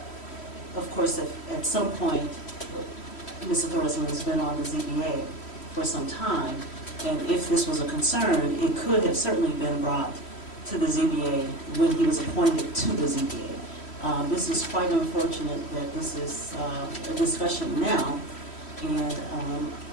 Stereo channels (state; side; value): late; right; 3.1 ms